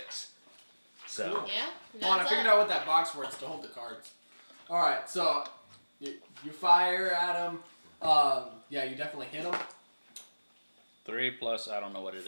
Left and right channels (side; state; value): both; inverted; correlation -1.00